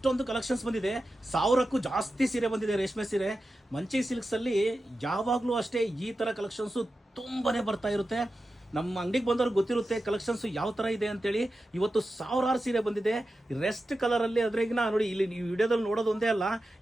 ಕಲೆಕ್ಷನ್ಸ್ ಬಂದಿದೆ. 1000ಕ್ಕೂ ಜಾಸ್ತಿ ಸೀರೆ ಬಂದಿದೆ, ರೇಷ್ಮೆ ಸೀರೆ. ಮಂಚಿ ಸಿಲ್ಕ್ಸ್ ಅಲ್ಲಿ ಯಾವಾಗಲೂ ಅಷ್ಟೇ ಈ ತರ ಕಲೆಕ್ಷನ್ಸ್ ತುಂಬಾನೇ ಬರ್ತಾ ಇರುತ್ತೆ. ನಮ್ಮ ಅಂಗಡಿಗೆ ಬಂದವ್ರಿಗೆ ಗೊತ್ತಿರುತ್ತೆ ಕಲೆಕ್ಷನ್ಸ್ ಯಾವ ತರ ಇದೆ ಅಂತೇಳಿ. ಇವತ್ತು 1000 ಸೀರೆ ಬಂದಿದೆ ರೆಸ್ಟ್ ಕಲರ್ ಅಲ್ಲಿ. ಅದ್ರಾಗಿನ ನೋಡಿ, ಇಲ್ಲಿ ನೀವು ವಿಡಿಯೋದಲ್ಲಿ ನೋಡೋದು ಒಂದೇ ಅಲ್ಲ,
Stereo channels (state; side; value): normal; both; correlation 0.92